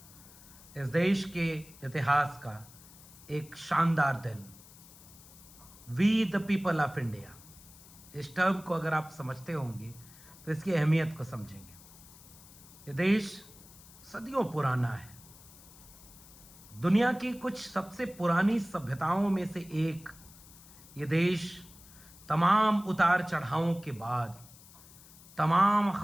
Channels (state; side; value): noise; left; hiss, 21 dB below the sound